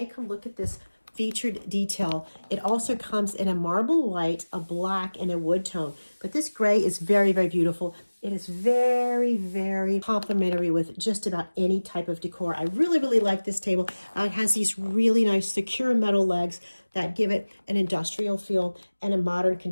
Come look at this featured detail. It also comes in a marble white, a black, and a wood tone. But this gray is very, very beautiful. It is very, very complementary with just about any type of decor. I really, really like this table. It has these really nice secure metal legs that give it an industrial feel and a modern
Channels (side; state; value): both; inverted; correlation -1.00